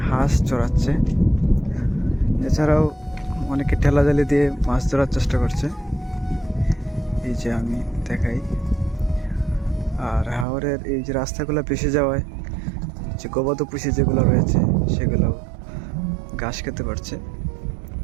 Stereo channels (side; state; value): left; drops out; at 10.5 s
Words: হাঁস চড়াচ্ছে, এছাড়াও অনেকে ঠেলা জালি দিয়ে মাছ ধরার চেষ্টা করছে, এই যে আমি দেখাই। আর হাওরের এই যে রাস্তাগুলো ভেসে যাওয়ায় যে গবাদি পশু যেগুলো রয়েছে সেগুলো ঘাস খেতে পারছে।